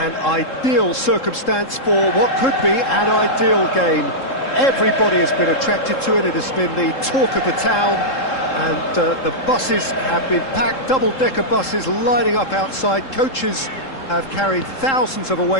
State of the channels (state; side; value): late; right; 3.7 ms